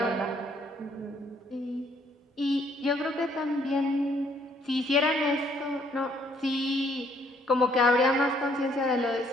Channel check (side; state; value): both; normal; correlation 0.66